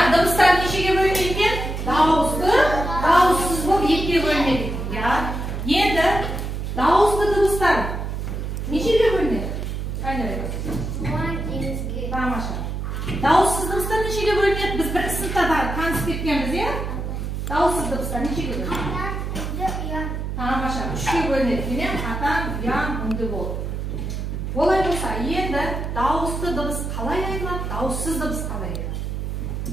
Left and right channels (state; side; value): noise; right; hum, 4 dB below the sound